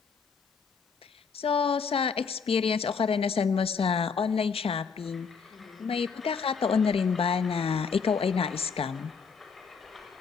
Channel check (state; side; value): quieter; right; 5.7 dB